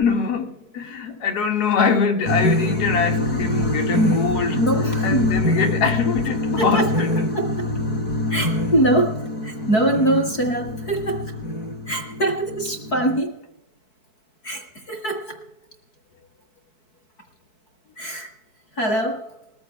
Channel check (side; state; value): right; late; 4.6 ms